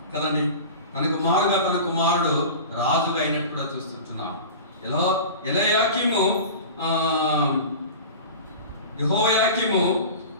కదండి. తనకు మారుగా తన కుమారుడు రాజుగా అయినట్టు కూడా చూస్తుంటున్నాం. ఎలయాకీము యెహోయాకీము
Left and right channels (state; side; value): inverted; both; correlation -0.34